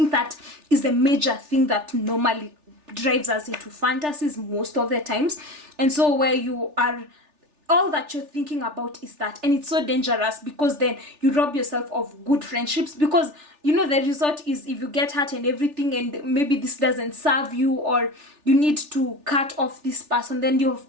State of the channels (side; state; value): left; late; 3.4 ms